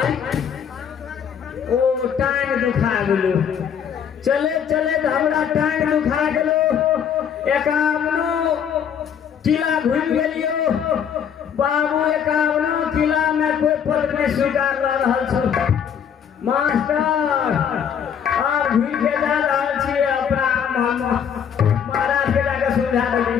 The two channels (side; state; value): right; quieter; 8.0 dB